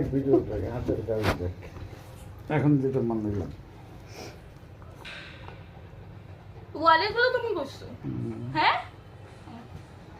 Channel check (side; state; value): both; identical; correlation 1.00